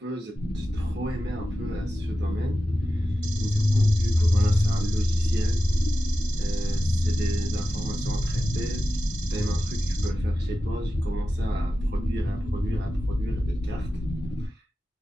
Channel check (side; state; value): both; normal; correlation 0.93